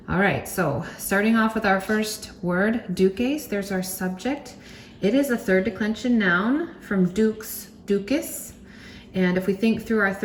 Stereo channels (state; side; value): identical; both; correlation 1.00